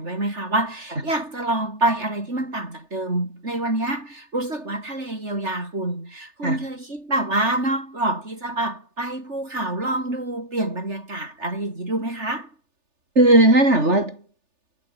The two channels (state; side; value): late; left; 3.4 ms